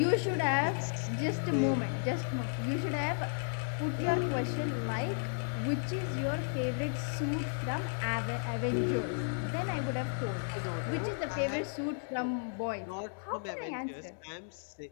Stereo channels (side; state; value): right; silent; digital silence